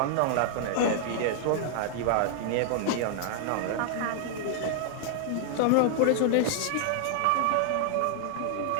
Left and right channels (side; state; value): both; different; correlation -0.01